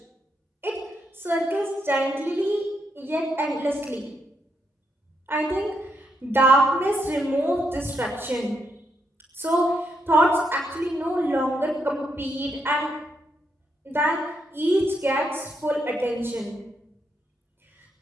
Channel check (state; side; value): normal; both; correlation 0.79